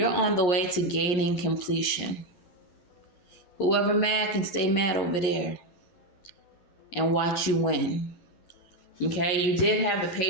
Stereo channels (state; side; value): late; right; 11 ms